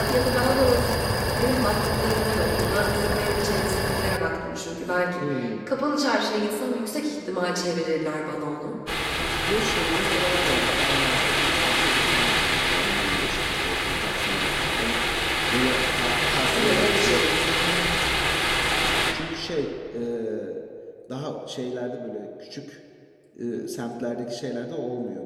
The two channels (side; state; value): both; identical; correlation 1.00